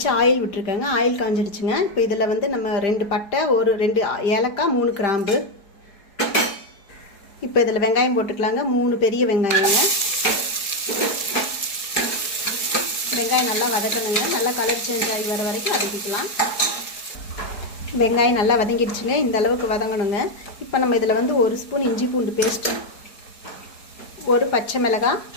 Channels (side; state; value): right; late; 4.7 ms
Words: ஆயில் விட்டுருக்கேங்க। ஆயில் காஞ்சிடுச்சுங்க। இப்போ இதில் வந்து நம்ம 2 பட்டை, ஒரு 2 ஏலக்காய், 3 கிராம்பு। இப்போ இதில் வெங்காயம் போட்டுக்கலாங்க। 3 பெரிய வெங்காயங்க। வெங்காயம் நல்லா வதக்கணுங்க। நல்லா கலர் சேஞ்ச் ஆகி வர வரைக்கும் வதக்கிக்கலாம்। வெங்காயம் நல்லா வதங்கிடுச்சுங்க। இந்த அளவுக்கு வதங்கணுங்க। இப்போ நம்ம இதில் வந்து 1 ஸ்பூன் இஞ்சி பூண்டு பேஸ்ட், ஒரு பச்சை மிளகாய்,